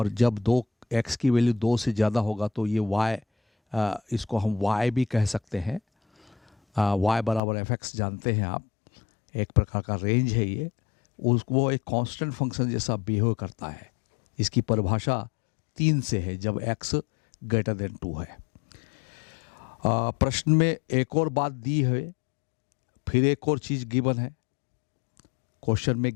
जब x की वैल्यू 2 से ज़्यादा होगा तो ये y, इसको हम y भी कह सकते हैं। y बराबर एफ एक्स जानते हैं आप, एक प्रकार का रेंज है ये, वो एक कांस्टेंट फंक्शन जैसा बिहेव करता है। इसकी परिभाषा 3 से है जब x ग्रेटर देन 2 है। प्रश्न में एक और बात दी है, फिर एक और चीज़ गिवन है। क्वेश्चन में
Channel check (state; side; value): drops out; right; at 7.4 s